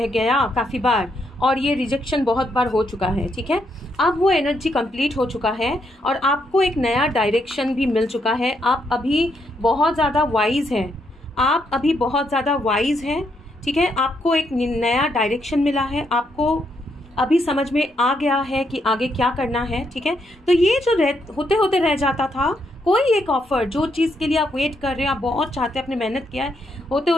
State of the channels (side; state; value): both; normal; correlation 0.77